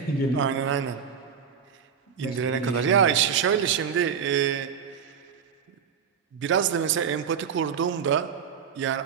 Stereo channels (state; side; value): quieter; left; 7.2 dB